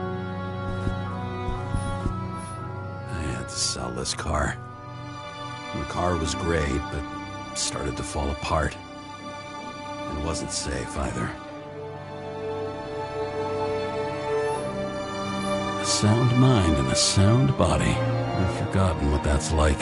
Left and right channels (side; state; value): both; identical; correlation 1.00